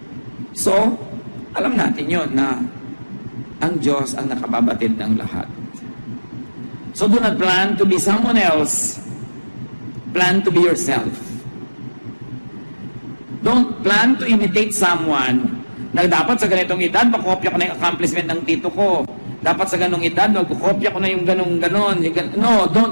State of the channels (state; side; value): inverted; both; correlation -1.00